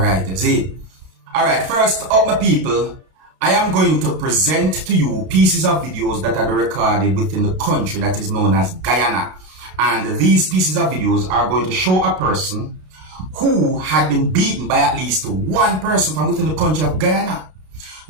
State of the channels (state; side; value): late; left; 32 ms